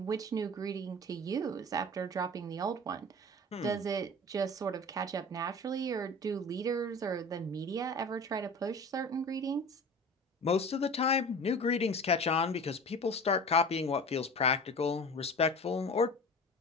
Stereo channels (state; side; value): normal; both; correlation 0.37